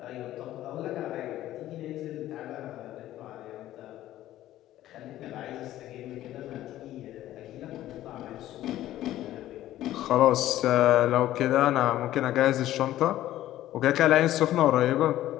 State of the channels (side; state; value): right; quieter; 13.9 dB